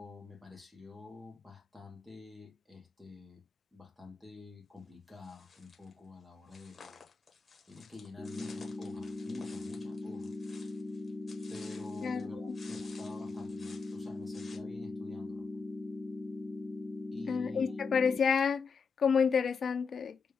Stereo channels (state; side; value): quieter; right; 5.1 dB